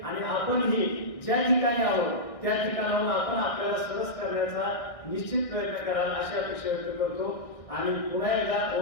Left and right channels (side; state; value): right; late; 1.6 ms